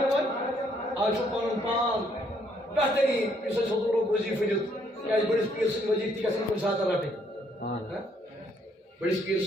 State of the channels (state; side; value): normal; both; correlation 0.69